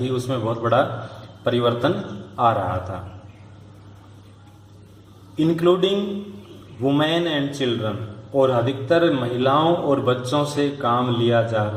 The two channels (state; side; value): identical; both; correlation 1.00